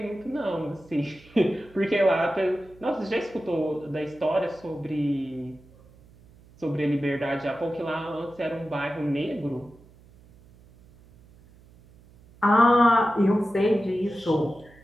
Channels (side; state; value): right; noise; hum, 26 dB below the sound